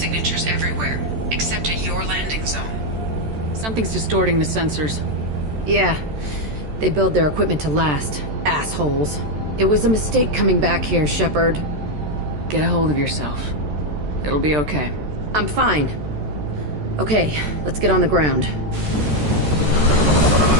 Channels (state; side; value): late; left; 13 ms